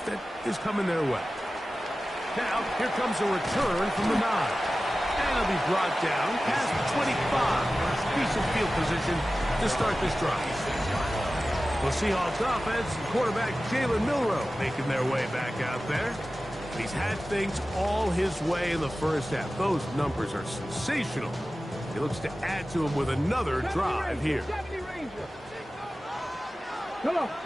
that is coming their way. Now, here comes a return from the 9. And it'll be brought down past the 25. Decent field position to start this drive. The Seahawks offense and quarterback Jalen Milroe making their way back out there. He's had things all his way in the first half. Those numbers are sensational. He looks to add to him with another drive here. They'll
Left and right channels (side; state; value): both; normal; correlation 0.95